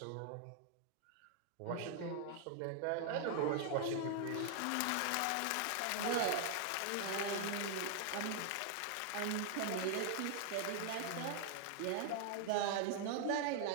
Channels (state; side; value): different; both; correlation 0.00